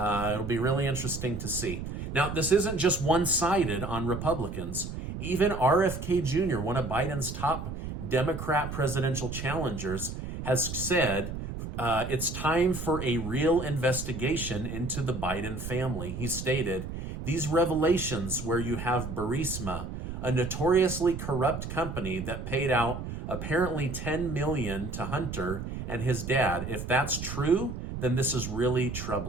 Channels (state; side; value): noise; right; rumble, 7 dB below the sound